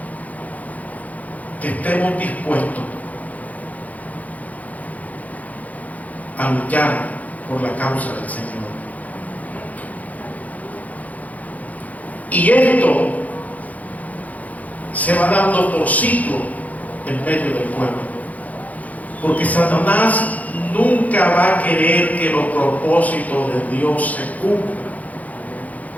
que estemos dispuestos a luchar por la causa del Señor. Y esto se va dando por ciclo en medio del pueblo, porque Satanás nunca va a querer que los propósitos de Dios se cumplan.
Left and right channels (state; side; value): late; right; 0.075 ms